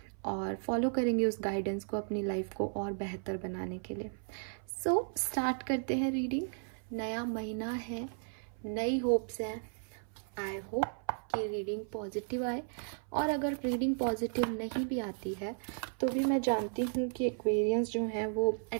और फॉलो करेंगे उस गाइडेंस को अपनी लाइफ को और बेहतर बनाने के लिए। सो स्टार्ट करते हैं रीडिंग। नया महीना है, नई होप्स हैं। आई होप कि रीडिंग पॉजिटिव आए, और अगर रीडिंग पॉजिटिव नहीं भी आती है तो भी मैं जानती हूँ कि एक्वेरियंस जो हैं वो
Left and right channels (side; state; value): left; silent; 55 dB below the other